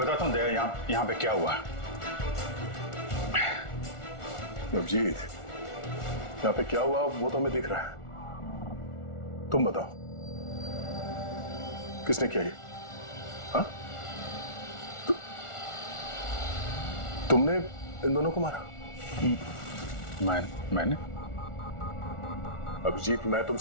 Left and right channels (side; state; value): right; late; 1.4 ms